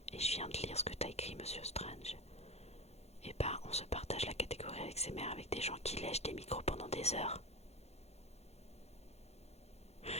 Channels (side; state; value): right; late; 0.31 ms